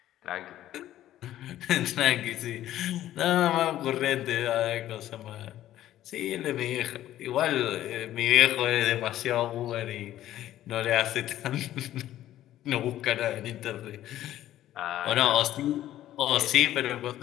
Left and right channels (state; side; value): quieter; right; 13.2 dB